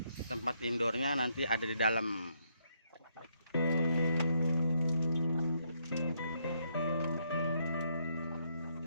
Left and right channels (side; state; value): both; inverted; correlation -0.76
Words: tempat indoornya nanti ada di dalam.